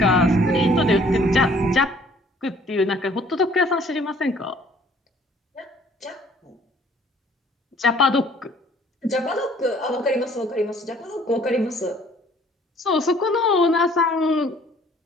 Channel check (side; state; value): both; normal; correlation 0.57